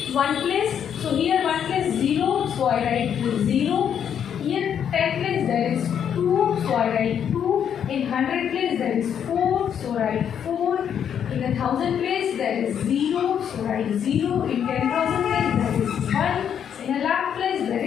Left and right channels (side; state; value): right; quieter; 8.6 dB